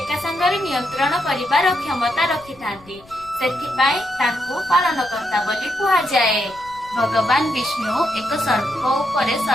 संगरे नियंत्रण करिबार क्षमता रखिथांती। सेथिपाई ताकू पालनकर्ता बोली कुहा जाए। भगवान विष्णु एक सर्प उपरे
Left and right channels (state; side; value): noise; left; rumble, 25 dB below the sound